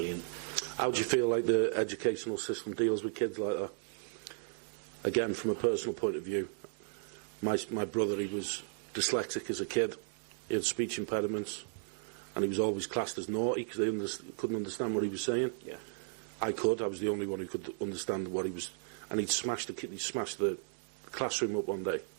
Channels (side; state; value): left; silent; digital silence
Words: How do you feel like the educational system deals with kids like that? Again, from a personal point of view, my brother, he was dyslexic as a kid. He had speech impediments, and he was always classed as naughty because they couldn't understand what he was saying. I could. I was the only one who could understand what he was. And he'd smashed the classroom up one day.